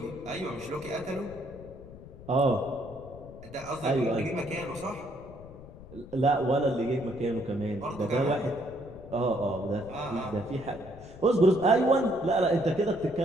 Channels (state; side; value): noise; left; rumble, 17 dB below the sound